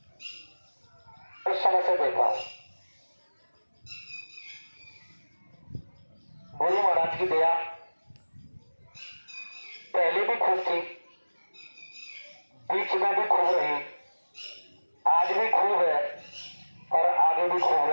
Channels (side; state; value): both; inverted; correlation -1.00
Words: उस समय से देख रहा हूं। गुरु महाराज की दया पहले भी खूब थी, बीच में भी खूब रही, आज भी खूब है और आगे भी खूब